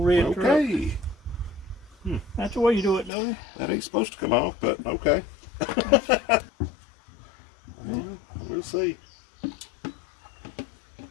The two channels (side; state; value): right; drops out; at 3.1 s